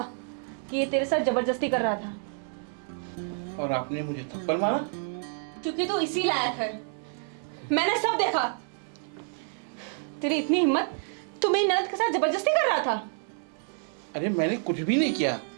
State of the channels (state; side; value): silent; left; 59 dB below the other